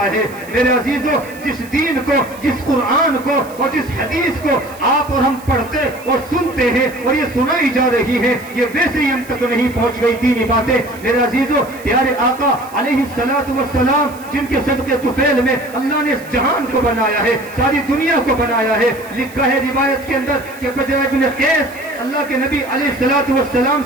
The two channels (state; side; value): noise; right; hiss, 21 dB below the sound